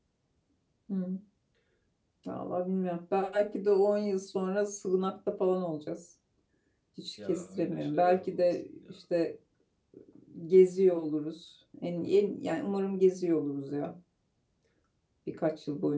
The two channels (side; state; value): both; identical; correlation 1.00